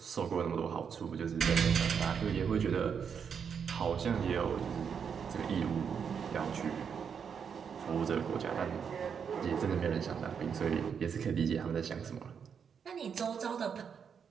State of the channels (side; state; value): left; quieter; 6.9 dB